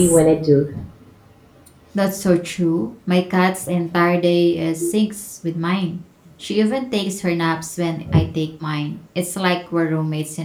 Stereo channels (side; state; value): both; identical; correlation 1.00